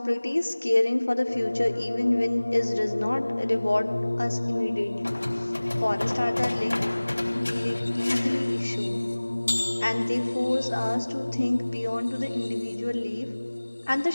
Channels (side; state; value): both; inverted; correlation -1.00